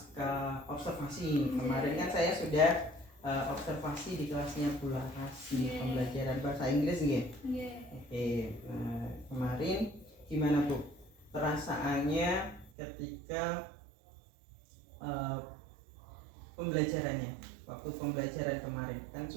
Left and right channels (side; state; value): left; drops out; at 12.7 s